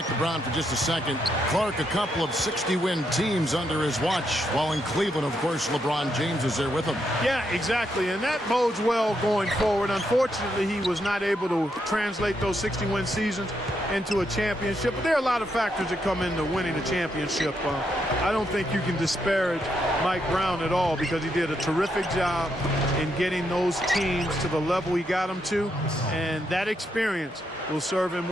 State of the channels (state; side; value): normal; both; correlation 0.79